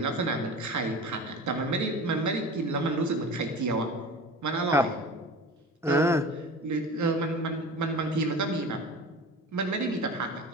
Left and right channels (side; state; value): both; normal; correlation 0.35